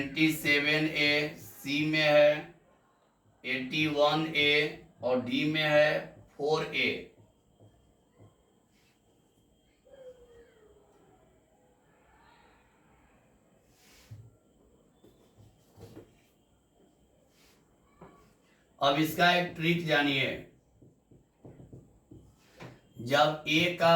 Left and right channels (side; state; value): both; identical; correlation 1.00